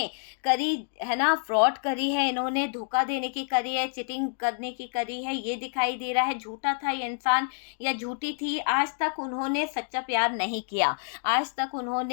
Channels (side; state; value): right; silent; digital silence